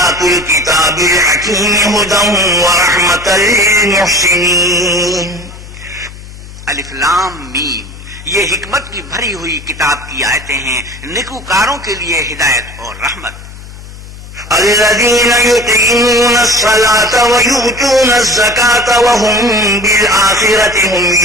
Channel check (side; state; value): left; noise; hum, 16 dB below the sound